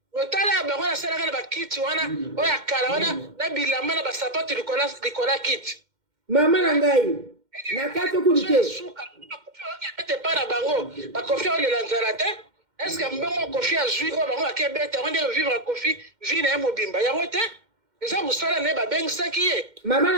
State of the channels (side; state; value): left; late; 2.1 ms